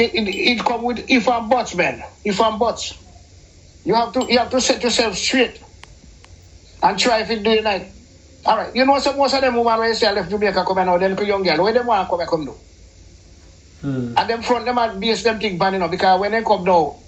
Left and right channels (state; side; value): identical; both; correlation 1.00